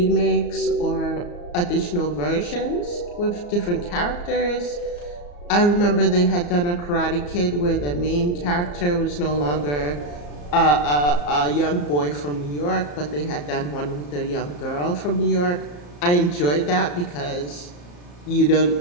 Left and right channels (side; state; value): right; late; 34 ms